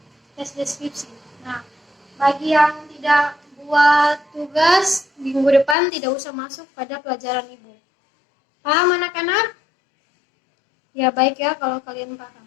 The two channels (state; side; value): drops out; right; at 5.8 s